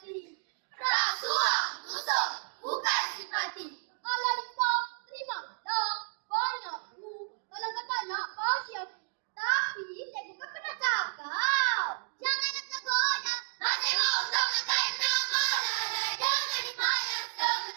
Rasuah, musuh, bukan simpati. Ala limpah, terima dah banyakku. Kalau kata nak bagi aku. Tapi saya bukan pernah cakap. Jangan nak tergoda. Masih mau untuk menekan nama. Jangan dimayar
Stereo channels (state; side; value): silent; left; digital silence